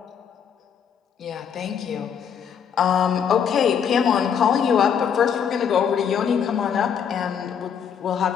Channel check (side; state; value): right; quieter; 7.7 dB